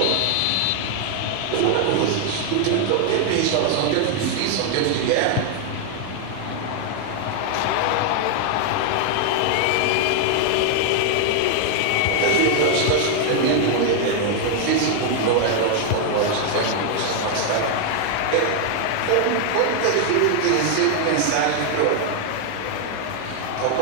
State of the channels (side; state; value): both; different; correlation 0.00